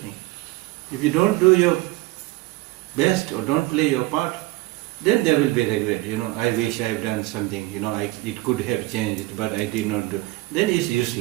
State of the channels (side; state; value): left; quieter; 20.0 dB